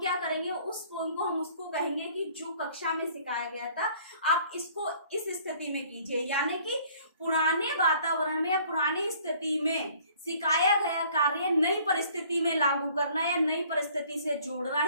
करेंगे उस पोएम को हम उसको कहेंगे कि जो कक्षा में सिखाया गया था आप इसको इस स्थिति में कीजिए। यानी कि पुराने वातावरण में या पुरानी स्थिति में सिखाया गया कार्य नई परिस्थिति में लागू करना या नई परिस्थिति से जोड़ना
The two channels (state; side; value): inverted; both; correlation -0.56